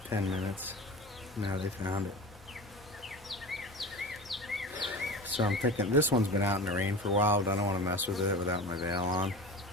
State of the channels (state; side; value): normal; both; correlation 0.32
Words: 10 minutes. Now they found it. So I'm thinking this one's been out in the rain for a while, but I don't want to mess with it without my veil on.